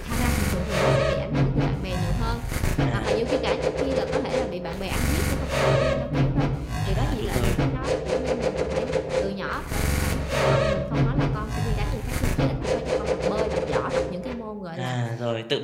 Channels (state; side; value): identical; both; correlation 1.00